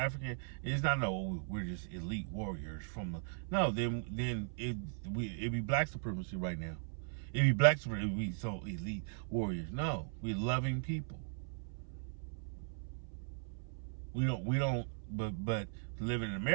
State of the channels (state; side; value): silent; left; 52 dB below the other